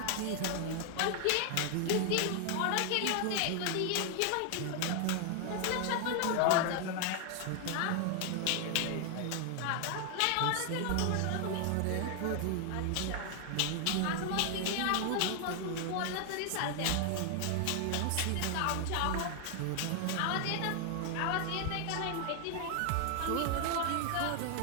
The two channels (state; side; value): different; both; correlation 0.00